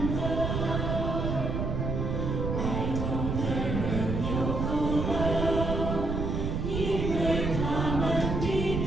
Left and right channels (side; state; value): right; noise; rumble, 1 dB below the sound